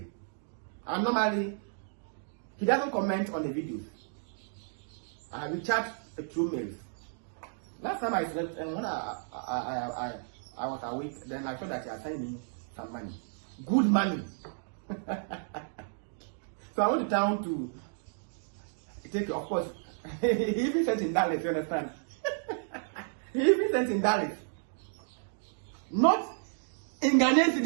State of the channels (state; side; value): silent; left; digital silence